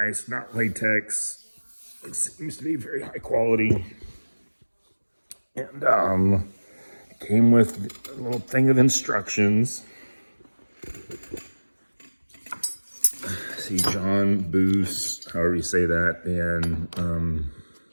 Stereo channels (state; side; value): inverted; both; correlation -1.00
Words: not latex. It seems to be very high quality. And it came with a little thing of instructions. See, John Boos, however you say that, and